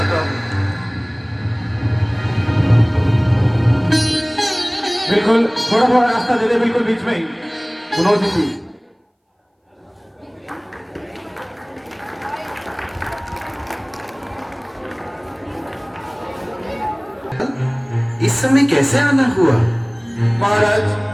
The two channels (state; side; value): identical; both; correlation 1.00